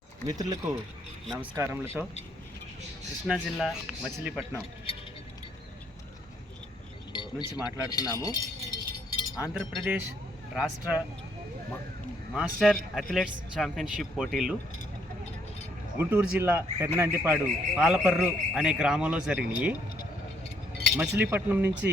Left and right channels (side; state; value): both; normal; correlation 0.69